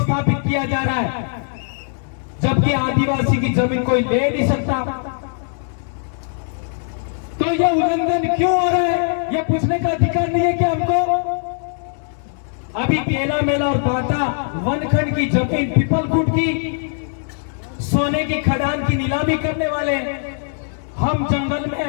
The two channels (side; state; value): right; silent; digital silence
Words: किया जा रहा है, जबकि आदिवासी की जमीन कोई ले नहीं सकता। तो यह उल्लंघन क्यों हो रहा है, यह पूछने का अधिकार नहीं है कि हमको? अभी केला मेला और बाटा वनखंड की जमीन पीपलकुट की सोने की खदान की नीलामी करने वाले। हम जंगल